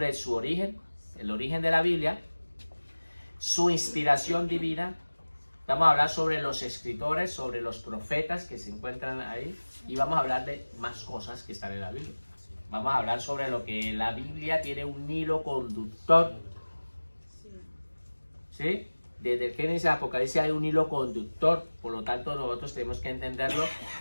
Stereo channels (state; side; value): inverted; both; correlation -1.00